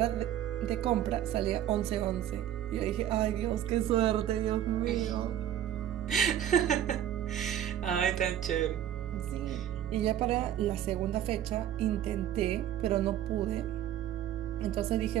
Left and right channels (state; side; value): quieter; left; 11.2 dB